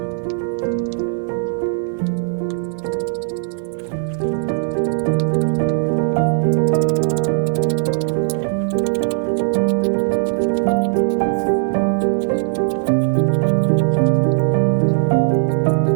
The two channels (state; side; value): silent; left; digital silence